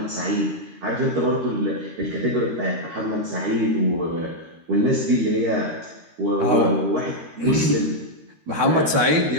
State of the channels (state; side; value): late; left; 13 ms